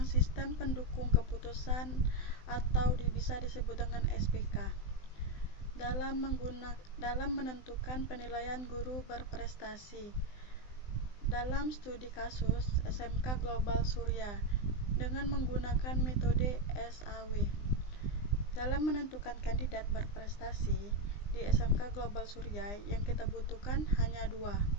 sistem pendukung keputusan atau bisa disebut dengan SPK. Dalam menentukan penilaian guru berprestasi. Dalam studi kasus SMK Global Surya dengan menggunakan metode SAW. Dalam menentukan kandidat berprestasi di SMK Global Surya yang kita butuhkan hanya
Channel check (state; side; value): late; right; 20 ms